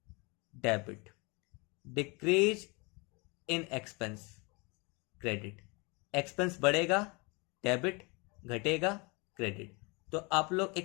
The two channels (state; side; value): quieter; right; 29.1 dB